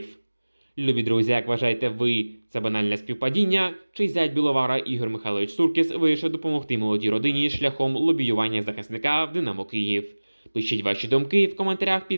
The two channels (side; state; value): both; inverted; correlation -1.00